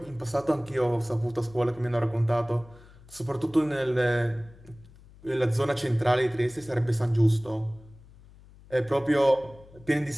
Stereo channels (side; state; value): left; noise; hum, 23 dB below the sound